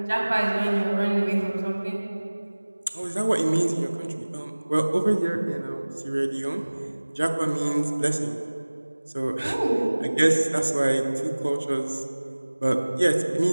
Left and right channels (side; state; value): both; inverted; correlation -1.00